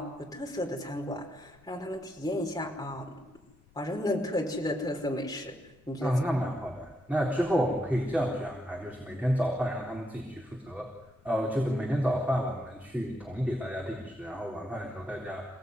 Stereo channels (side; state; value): left; noise; rumble, 28 dB below the sound